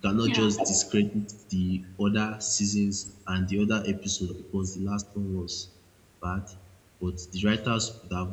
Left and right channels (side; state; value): both; identical; correlation 1.00